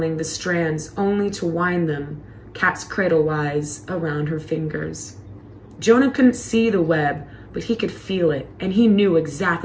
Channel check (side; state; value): both; identical; correlation 1.00